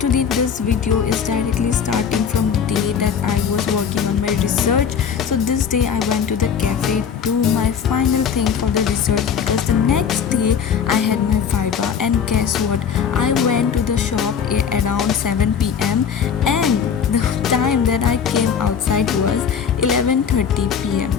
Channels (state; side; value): quieter; right; 7.2 dB